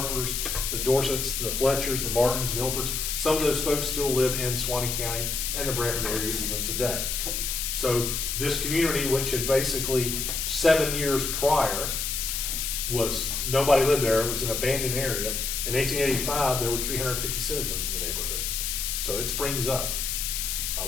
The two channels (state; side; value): noise; left; hiss, 1 dB below the sound